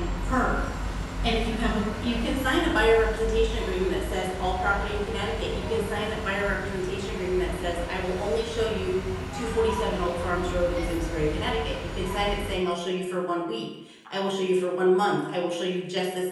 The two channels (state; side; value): identical; both; correlation 1.00